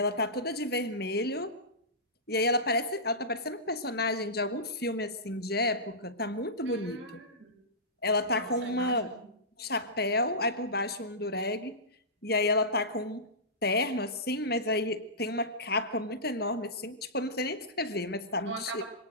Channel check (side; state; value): both; normal; correlation -0.19